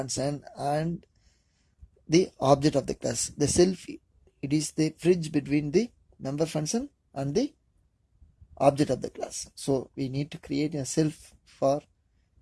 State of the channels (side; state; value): both; identical; correlation 1.00